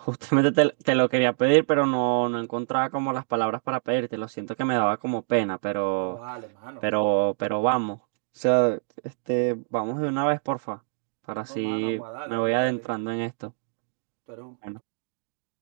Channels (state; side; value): silent; left; digital silence